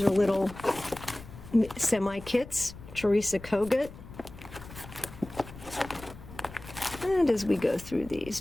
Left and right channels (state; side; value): noise; left; rumble, 16 dB below the sound